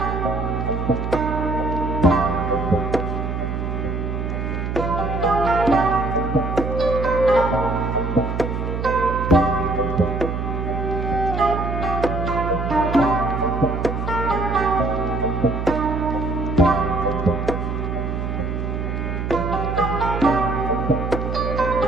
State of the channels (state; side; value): noise; right; hum, 3 dB below the sound